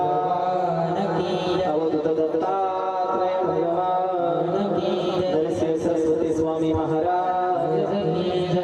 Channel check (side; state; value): both; identical; correlation 1.00